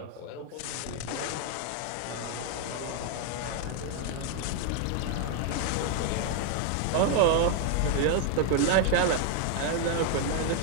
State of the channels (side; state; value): both; different; correlation 0.00